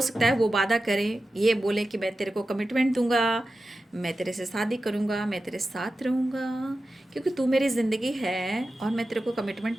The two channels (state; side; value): normal; both; correlation 0.93